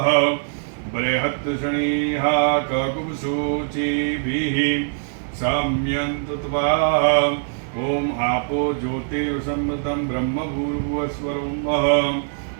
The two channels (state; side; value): silent; left; digital silence